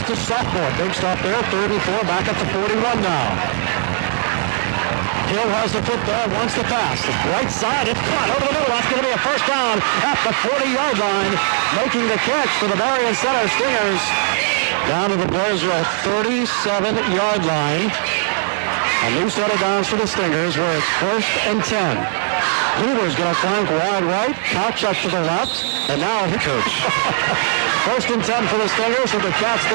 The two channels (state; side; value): silent; left; 63 dB below the other